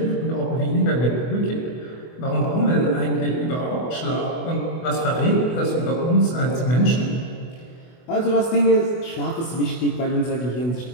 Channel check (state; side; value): late; right; 24 ms